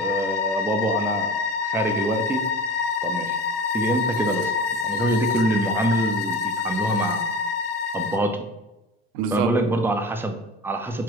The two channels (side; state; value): both; normal; correlation 0.35